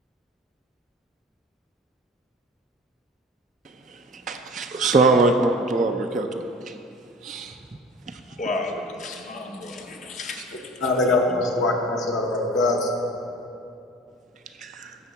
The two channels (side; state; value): both; normal; correlation 0.41